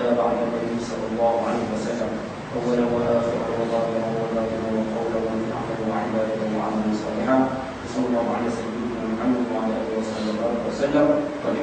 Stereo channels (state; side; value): identical; both; correlation 1.00